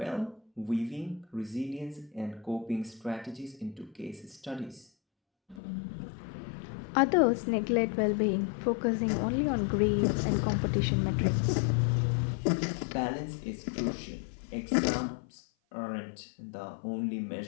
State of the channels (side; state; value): right; drops out; at 5.6 s